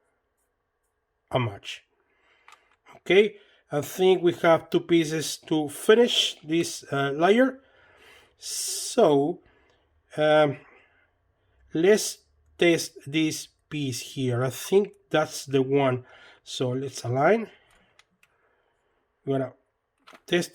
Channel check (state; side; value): identical; both; correlation 1.00